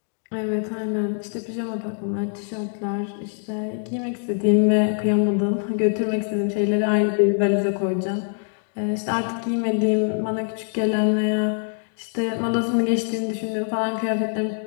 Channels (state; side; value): silent; right; 60 dB below the other